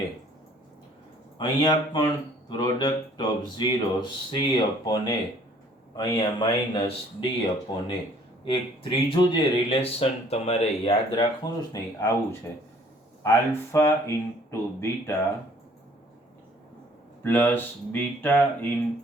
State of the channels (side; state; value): both; normal; correlation 0.57